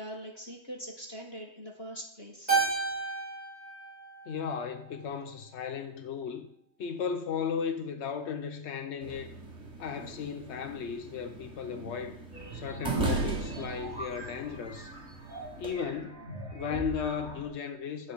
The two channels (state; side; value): late; right; 3.2 ms